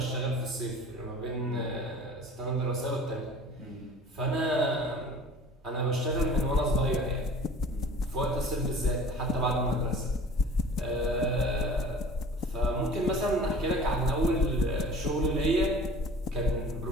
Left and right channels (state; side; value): normal; both; correlation 0.44